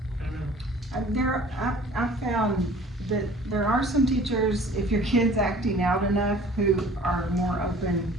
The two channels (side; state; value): both; normal; correlation 0.49